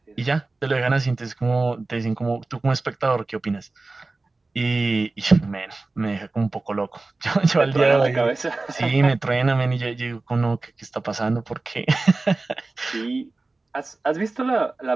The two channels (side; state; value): left; quieter; 3.4 dB